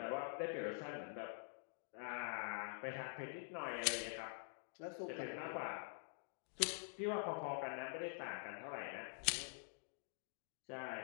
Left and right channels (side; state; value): right; silent; digital silence